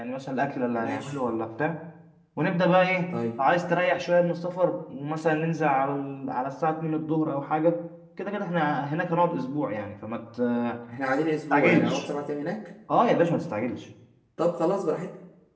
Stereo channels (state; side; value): identical; both; correlation 1.00